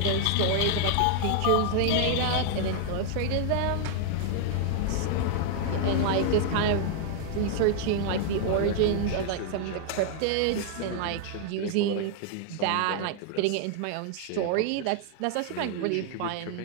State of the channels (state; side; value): different; both; correlation 0.00